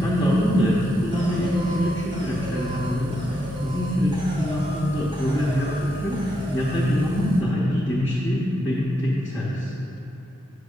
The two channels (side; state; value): both; normal; correlation 0.81